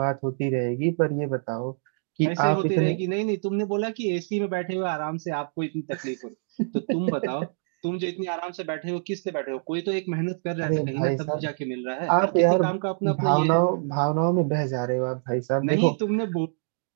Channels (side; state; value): left; silent; digital silence